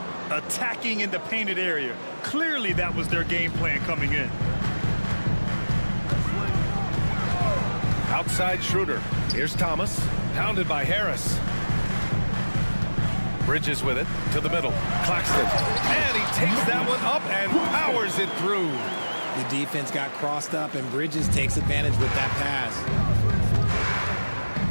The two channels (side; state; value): both; inverted; correlation -1.00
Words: Attacking in the painted area. Clearly that was their game plan coming in. Outside Schroeder. Here's Thomas. Pounded by Harris. Bridges with it to the middle. Claxton. And he takes that one up and powers it through. The defense got crossed up, and Bridges takes advantage with that pass.